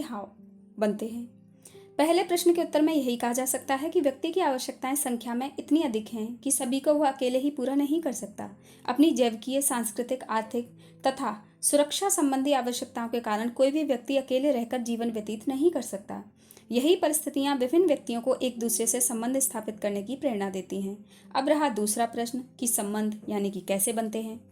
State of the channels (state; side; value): identical; both; correlation 1.00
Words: हाउ बनते हैं। पहले प्रश्न के उत्तर में यही कहा जा सकता है कि व्यक्ति की आवश्यकताएं संख्या में इतनी अधिक हैं कि सभी को वह अकेले ही पूरा नहीं कर सकता। अपनी जैविकीय, सांस्कृतिक, आर्थिक तथा सुरक्षा संबंधी आवश्यकताओं के कारण कोई भी व्यक्ति अकेले रहकर जीवन व्यतीत नहीं कर सकता। यही परिस्थितियां विभिन्न व्यक्तियों को एक दूसरे से संबंध स्थापित करने की प्रेरणा देती हैं। अब रहा दूसरा प्रश्न कि संबंध यानी कि कैसे बनते हैं।